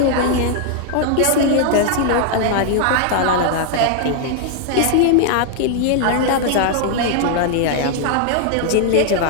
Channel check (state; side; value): different; both; correlation 0.00